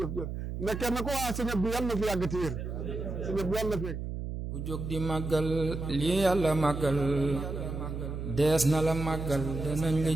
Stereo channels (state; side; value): noise; right; hum, 5 dB below the sound